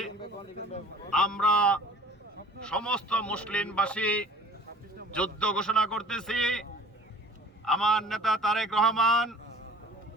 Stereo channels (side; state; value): both; normal; correlation 0.47